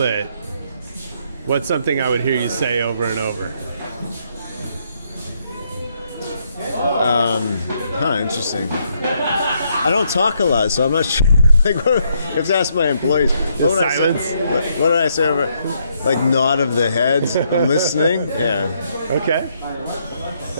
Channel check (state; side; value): inverted; both; correlation -0.74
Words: what's something I would hear you say over and over? Interesting. I don't talk a lot, so I'm not sure. You have to ask my employees. What silence? What did I say over? Like nod of the head. I'm listening. Yeah. Okay.